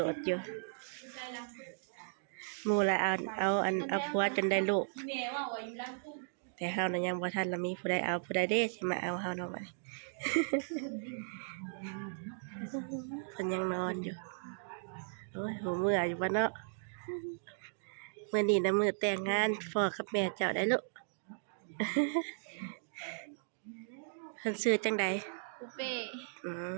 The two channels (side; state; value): left; silent; digital silence